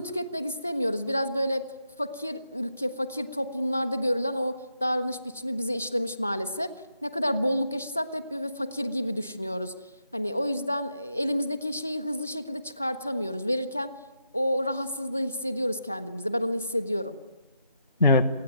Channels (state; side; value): inverted; both; correlation -0.81